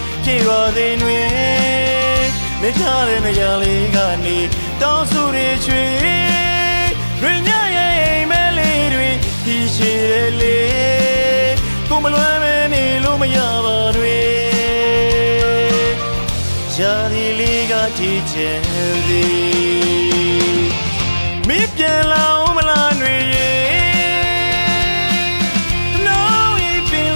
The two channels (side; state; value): both; inverted; correlation -1.00